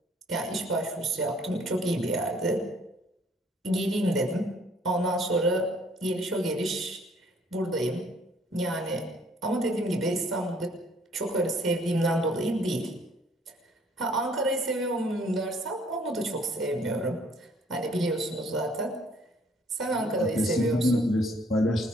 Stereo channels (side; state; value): both; normal; correlation 0.60